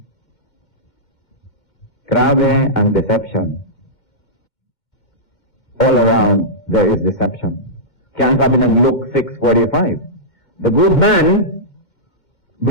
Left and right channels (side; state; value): right; late; 2.1 ms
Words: Grabe ang deception. All around, there is deception. Kaya ang sabi ng Luke 6:45, the good man